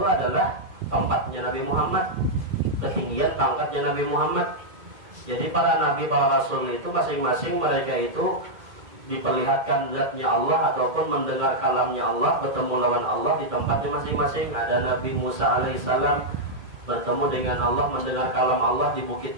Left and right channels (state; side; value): late; left; 2.2 ms